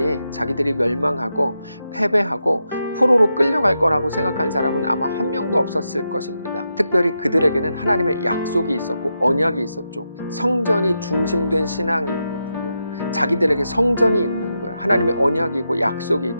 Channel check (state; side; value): inverted; both; correlation -0.86